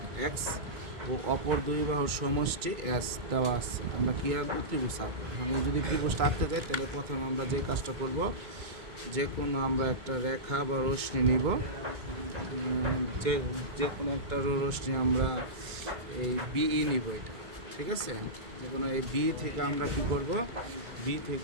এক্স ও অপর দুই বাহুর সমষ্টি এস দেওয়া আছে। আমরা কী আঁকবো? ত্রিভুজ আঁকবো। আমি যদি ত্রিভুজটা আঁকতে যাই তাহলে প্রথমে আমরা যে কাজটা করব, যে কোনো আমরা একটা রেখা বা রশ্মি নিব, যে কোনো একটা রশ্মি আমরা এই বিই নিব, এটা ঠিক আছে। যে কোনো এই বি থেকে আমরা কী করব, বি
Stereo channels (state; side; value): late; left; 2.3 ms